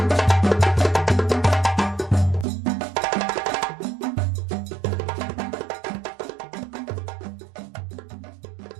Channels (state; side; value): drops out; left; at 2.5 s